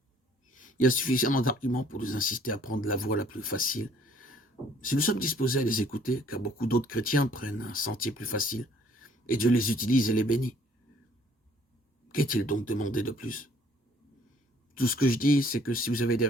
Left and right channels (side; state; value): both; normal; correlation 0.59